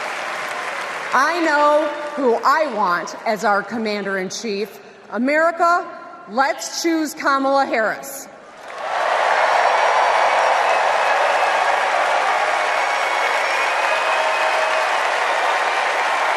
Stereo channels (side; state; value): both; identical; correlation 1.00